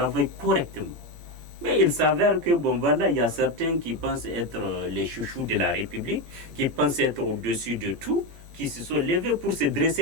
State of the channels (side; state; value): left; late; 17 ms